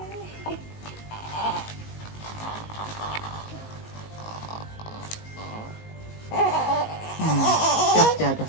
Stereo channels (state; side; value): late; right; 19 ms